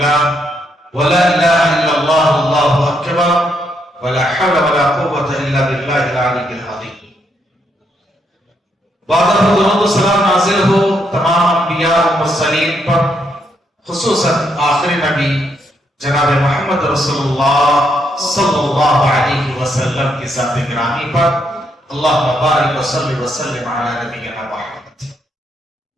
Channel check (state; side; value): normal; both; correlation 0.76